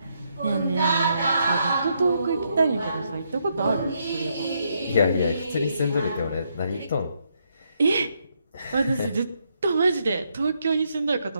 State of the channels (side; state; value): both; inverted; correlation -0.77